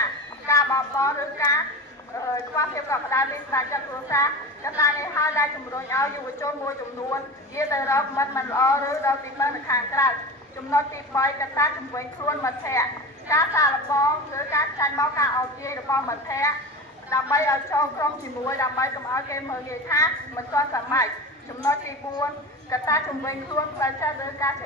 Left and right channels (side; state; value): both; normal; correlation 0.30